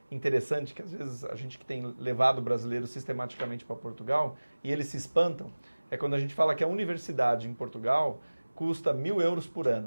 interessante que às vezes a gente que tem levado brasileiros sistematicamente para Portugal e eles se espantam, é quando a gente fala que a universidade em Portugal custa 1.000 euros por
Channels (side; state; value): both; inverted; correlation -1.00